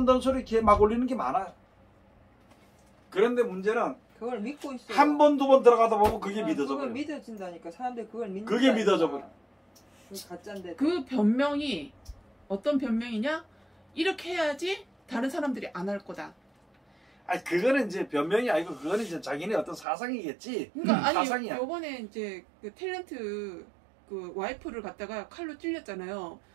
되는 소리 걔 막 올리는 게 많아요. 그런데 문제는 그걸 믿고 있어. 한 번, 두 번 들어가다 보면 그게 믿어져 그걸 버려. 믿어진다니까. 사람들이 그걸 그게 믿어져 버려. 그 가짜인데. 그 변명이 어떤 변명이냐? 이렇게 해야지 다른 사람들이 안 할 거다. 아니 그거는 이제 변명이 아니고 그거는 이제 자기네 어떤 사상이겠지. 그러니까 아니 사상이야. 요번에 이제 그 탤런트 그 와이프를 갖다가 칼로 찔렸잖아요.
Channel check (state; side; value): drops out; left; at 19.9 s